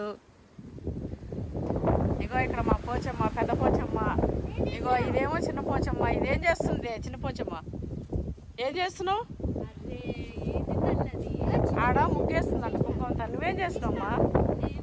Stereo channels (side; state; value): both; identical; correlation 1.00